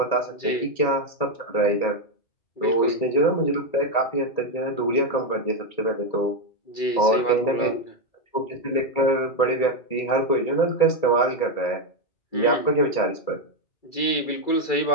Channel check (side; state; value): right; late; 2.3 ms